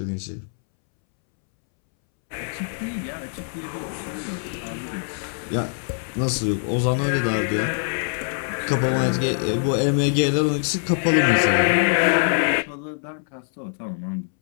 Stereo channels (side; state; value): right; silent; 63 dB below the other